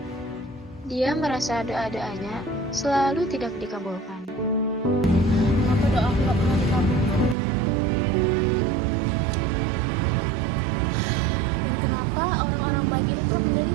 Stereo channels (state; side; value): drops out; left; at 7.4 s